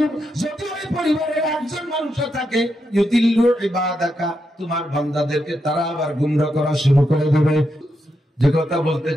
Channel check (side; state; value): both; normal; correlation 0.84